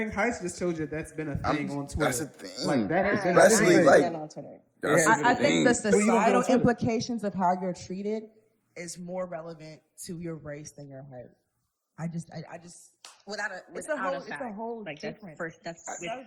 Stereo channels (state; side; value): identical; both; correlation 1.00